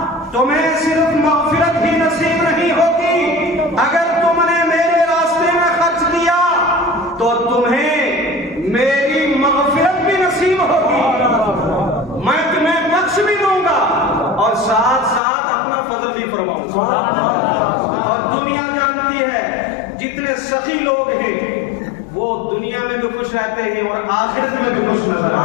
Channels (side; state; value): right; drops out; at 15.2 s